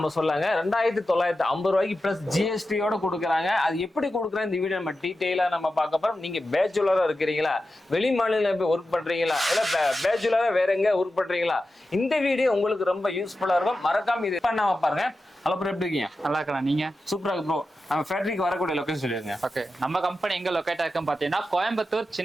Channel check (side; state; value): both; normal; correlation 0.92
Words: சொல்லாங்க 2,950 ரூபாய்க்கு பிளஸ் ஜிஎஸ்டியோட கொடுக்குறாங்க. அது எப்படி கொடுக்குறாங்க இந்த வீடியோ நம்ம டீடைலா நம்ம பார்க்க போறோம். நீங்க பேச்சுலரா இருக்கிறீங்களா, வெளி மாநிலம் போய் ஒர்க் பண்றீங்களா, இல்ல பேச்சுலரா வேற எங்க ஒர்க் பண்றீங்களா, இந்த வீடியோ உங்களுக்கு ரொம்ப யூஸ்ஃபுல்லா இருக்கும். மறக்காம இது பண்ணாம பாருங்க. ஹலோ ப்ரோ, எப்படி இருக்கீங்க? நல்லா இருக்கலாம். நீங்க? சூப்பரா இருக்கு ப்ரோ. நம்ம ஃபேக்டரிக்கு வரக்கூடிய லொகேஷன் சொல்லிருங்க. ஓகே, நம்ம கம்பெனி எங்க லொகேட் ஆயிருக்குன்னு பாத்தீங்கன்னா கோயம்புத்தூர்